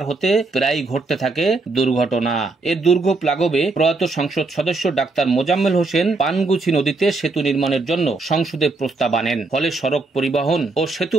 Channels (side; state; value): left; quieter; 3.5 dB